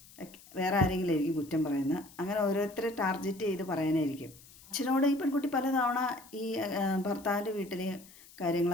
വേറെ ആരെങ്കിലും ആയിരിക്കും കുറ്റം പറയുന്നത്. അങ്ങനെ ഓരോരുത്തരെ ടാർഗറ്റ് ചെയ്ത് പറയാനായിരിക്കും. അച്ഛനോട് ഈ പെൺകുട്ടി പലതവണ ഈ ഭർത്താവിൻ്റെ വീട്ടിൽ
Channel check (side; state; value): left; noise; hiss, 22 dB below the sound